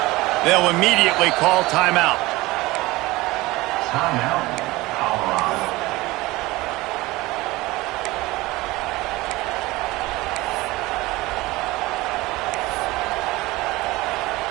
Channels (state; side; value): quieter; left; 20.3 dB